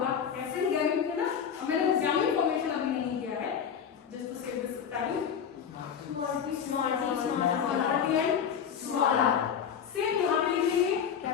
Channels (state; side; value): quieter; right; 7.8 dB